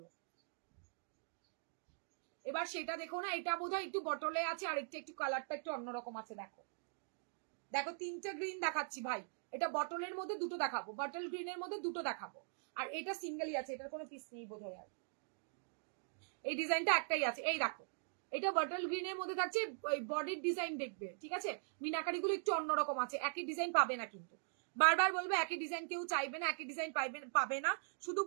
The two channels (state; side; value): silent; left; digital silence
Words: এবার সেটা দেখো না। এটা বোধহয় একটু বটলে আছে, আর একটু কালারটা একটু অন্যরকম আছে। দেখো দেখো, তিনটে গ্রিন দেখাচ্ছি ভাই। এটা বটলের মধ্যে দুটো দেখাবো, বটল গ্রিনের মধ্যে দুটো দেখাবো, আর এটা সিঙ্গেলই আছে, এটার কোনো পিস নেই বোধহয়। আর এই ডিজাইনটা একটাই আছে, এই দেখো, এটা বটল গ্রিনের মধ্যে থাকছে, ওই বডির ডিজাইন দেখবে, ঠিক আছে? মিনাকারি গুলো একটু অন্যরকম আছে, একই ডিজাইন পাবে না কিন্তু। বারবার বলবো, একই ডিজাইন কেউ চাইবে না, একই ডিজাইন পাবে না। শুধু